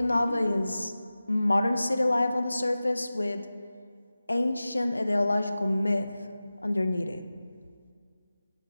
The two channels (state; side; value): inverted; both; correlation -0.96